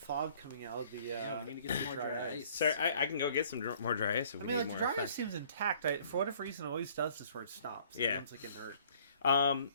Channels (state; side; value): inverted; both; correlation -0.57